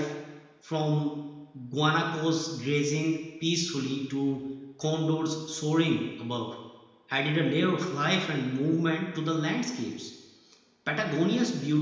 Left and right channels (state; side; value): identical; both; correlation 1.00